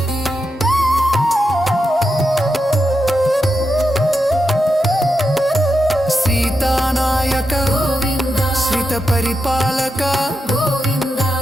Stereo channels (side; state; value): both; normal; correlation 0.87